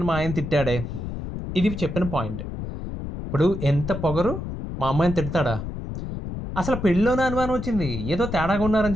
మా ఆయన తిట్టాడే. ఇది చెప్పిన పాయింట్. ఇప్పుడు ఎంత పొగరు, మా అమ్మాయిని తిడతాడా? అసలు పెళ్ళిలోనే అనుమానం వచ్చింది, ఏదో తేడాగా ఉన్నారని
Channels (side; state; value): left; noise; rumble, 7 dB below the sound